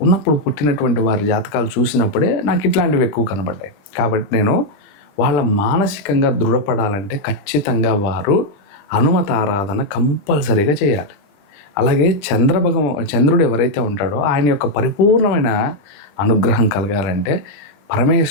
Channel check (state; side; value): late; right; 20 ms